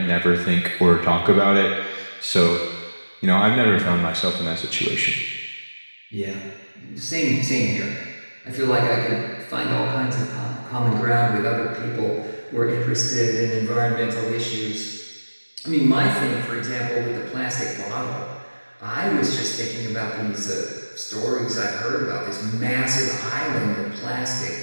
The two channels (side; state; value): both; inverted; correlation -1.00